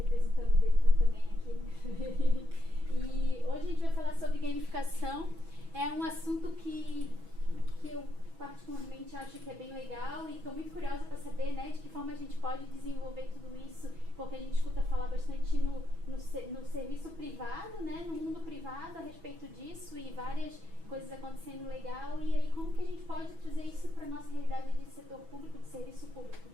o DETRAN também aqui. E hoje a gente vai falar sobre gamificação. É um assunto que eu particularmente acho que é bem legal e estou muito curiosa para saber, né, de que forma a gente pode desenvolver tudo isso, porque a gente escuta falar bastante no serviço privado, né, no mundo privado a respeito disso e várias coisas acontecendo legal, e aí como que a gente pode trazer isso para a nossa realidade de setor público, de serviço público.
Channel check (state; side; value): late; left; 6.1 ms